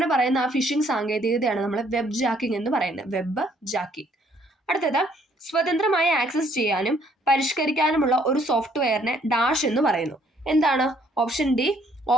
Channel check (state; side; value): normal; both; correlation 0.65